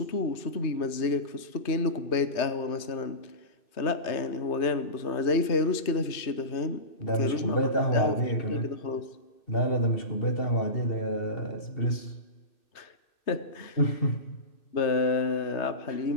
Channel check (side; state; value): right; late; 2.6 ms